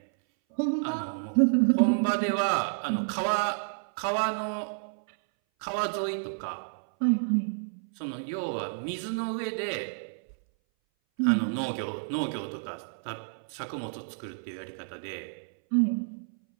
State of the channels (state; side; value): silent; left; 58 dB below the other